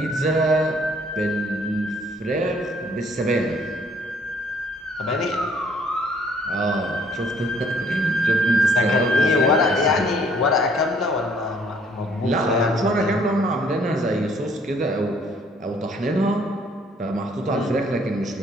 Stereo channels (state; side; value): normal; both; correlation 0.62